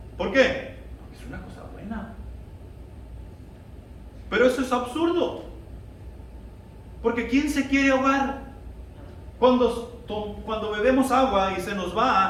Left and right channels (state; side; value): identical; both; correlation 1.00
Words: ¿Por qué? Es una cosa buena. Pero eso es absurdo. Porque ¿quién se quiere ahogar? Cuando bebemos agua y se nos